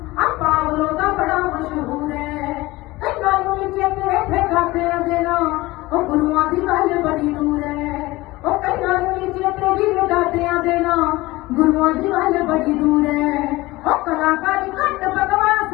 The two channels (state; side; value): quieter; right; 19.9 dB